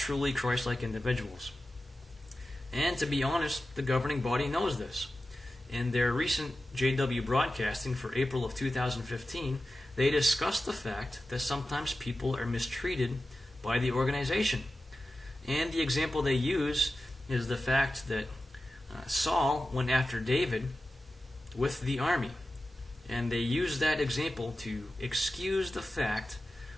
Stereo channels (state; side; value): normal; both; correlation 0.93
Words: Christ-like individuals. And to be honest, the governing body knows this. In their recent JW broadcasting for April of 2015, they discussed the fact that sometimes people are mistreated by the organization. And the example they use is the fact that Saul went after David with the army. And they use that example to excuse the fact